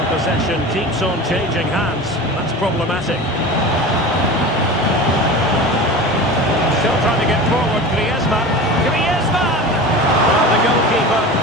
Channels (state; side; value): normal; both; correlation 0.32